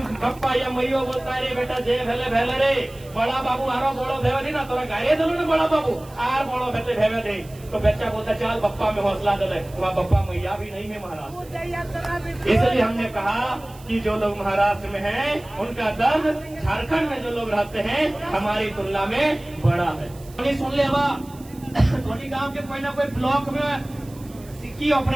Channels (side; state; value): right; noise; hiss, 23 dB below the sound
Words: पप्पा या मैयो बोलता है रे बेटा जे भेले भेले रे, बड़ा बाबू आरो बड़ो भेवे नहीं ना तोरा गाये दिलो ना बड़ा बाबू आर बड़ो भेते भेवे दे। तो बच्चा बोलता चल पप्पा में हौसला दे, वहाँ पप्पा मैया भी नहीं है महाराष्ट्र। इसलिए हमने कहा कि जो लोग महाराष्ट्र में हैं उनका दर्द झारखंड में जो लोग रहते हैं हमारी तुलना में बड़ा है। सुन ले धोनी गाँव के कोई ना कोई ब्लॉक में सिक्की